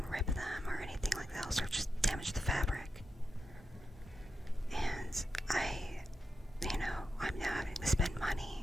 and rip them or anything like that, else or just damage the fabric. And I'm now having to spend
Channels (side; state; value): both; normal; correlation 0.87